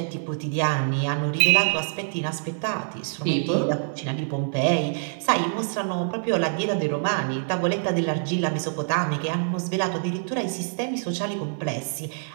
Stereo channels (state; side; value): silent; left; digital silence